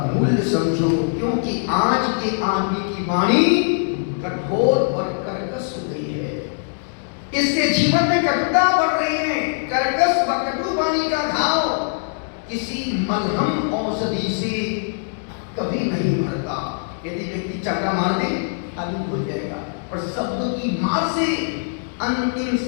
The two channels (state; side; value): silent; right; digital silence